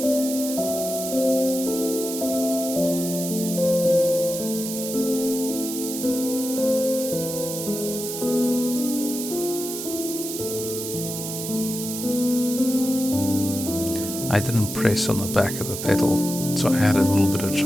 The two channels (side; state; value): right; noise; hiss, 6 dB below the sound